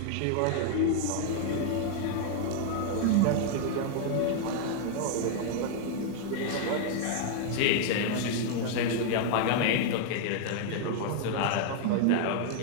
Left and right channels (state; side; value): different; both; correlation 0.00